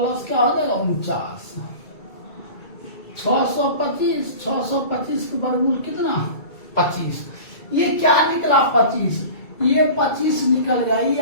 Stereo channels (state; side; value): late; right; 2.3 ms